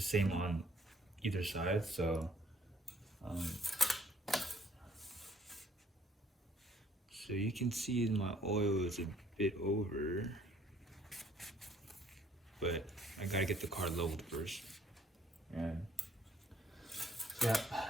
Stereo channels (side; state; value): both; normal; correlation 0.63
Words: same on either side, so so you can see my oil is a bit over, but I gotta get the car leveled first. And yeah,